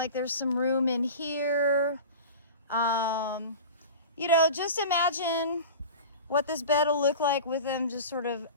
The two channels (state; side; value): inverted; both; correlation -0.35